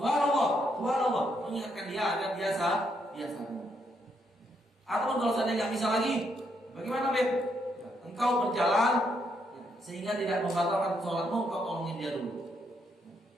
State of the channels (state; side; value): normal; both; correlation 0.76